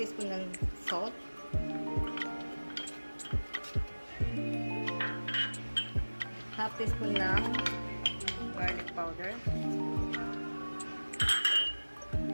ng salt, half teaspoon ng garlic powder,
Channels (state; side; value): inverted; both; correlation -1.00